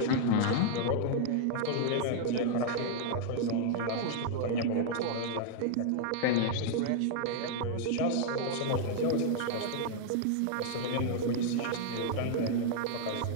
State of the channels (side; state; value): both; different; correlation -0.01